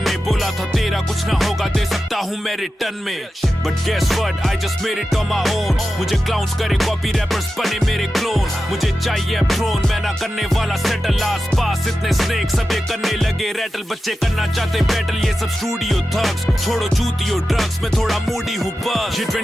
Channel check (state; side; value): normal; both; correlation 0.92